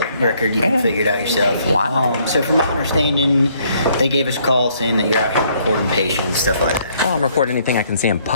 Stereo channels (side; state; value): both; inverted; correlation -0.66